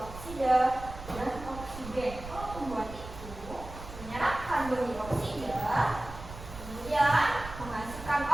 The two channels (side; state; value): right; noise; rumble, 13 dB below the sound